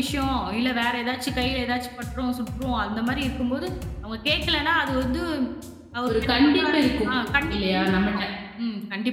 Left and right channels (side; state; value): both; identical; correlation 1.00